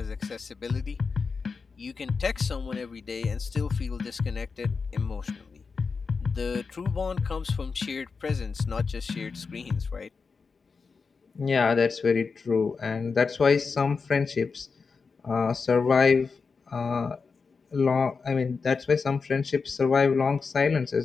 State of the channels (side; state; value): right; quieter; 4.9 dB